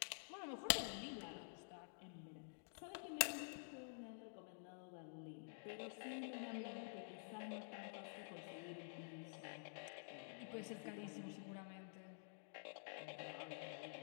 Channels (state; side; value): silent; right; digital silence